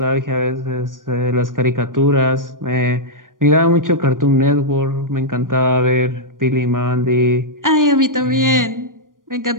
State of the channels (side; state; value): left; late; 0.90 ms